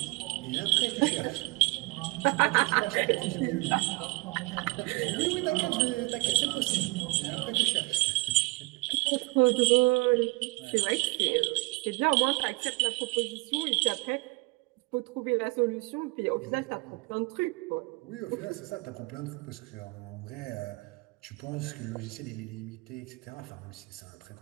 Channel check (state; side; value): quieter; left; 25.0 dB